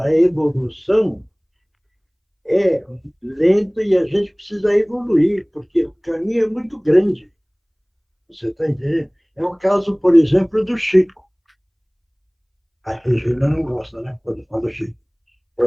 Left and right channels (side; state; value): both; identical; correlation 1.00